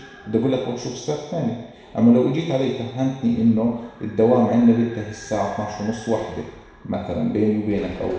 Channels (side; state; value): both; identical; correlation 1.00